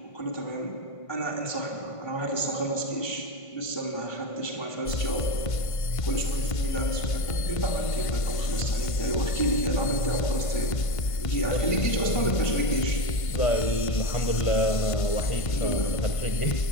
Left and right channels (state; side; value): late; right; 1.5 ms